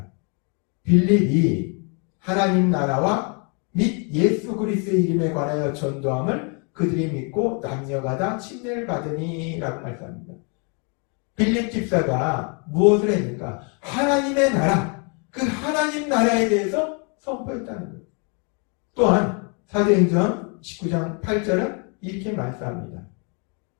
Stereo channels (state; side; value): quieter; right; 36.3 dB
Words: 빌립이 하나님 나라와 및 예수 그리스도의 이름에 관하여 전도함을 그들이 믿고 남녀가 침례를 받으니 라고 말씀합니다. 빌립 집사가 무엇을 했는가? 하나님의 나라, 그 하나님 나라에 대해서 선포했다는 거예요. 또한 사도행전 19장 8절은 이렇게 말씀합니다.